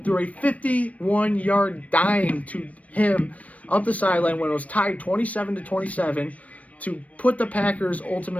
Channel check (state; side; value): late; right; 0.067 ms